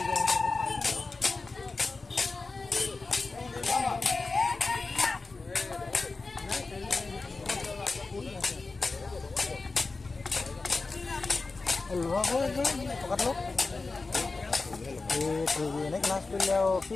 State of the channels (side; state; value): right; quieter; 3.8 dB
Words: এনে ক্লাছ কৰিলে আৰু কি